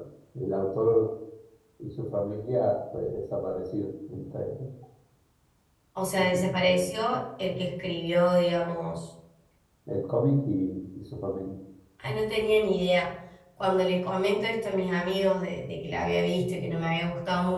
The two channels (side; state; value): both; identical; correlation 1.00